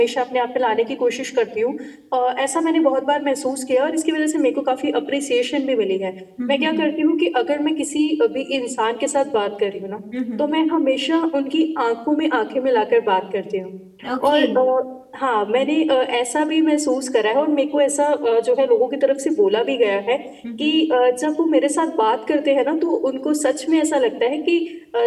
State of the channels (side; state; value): both; identical; correlation 1.00